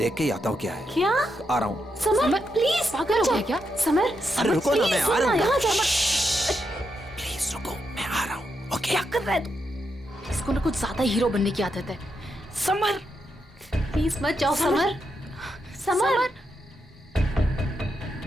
के ही आता हूँ क्या है। क्या? आ रहा हूँ। समर प्लीज, पागल हो गया क्या? समर अरे रुको ना, मैं आ रहा हूँ। यहाँ जा। प्लीज रुको, मैं आ रहा हूँ। ओके। क्या कर रहा है तू? इसको ना कुछ ज्यादा हीरो बनने की आदत है। समर प्लीज मत जाओ। Summer summer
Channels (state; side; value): normal; both; correlation 0.83